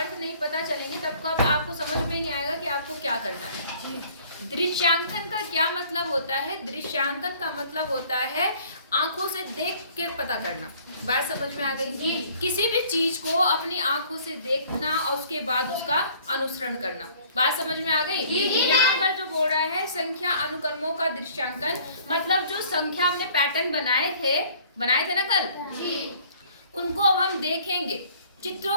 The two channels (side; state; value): both; inverted; correlation -0.55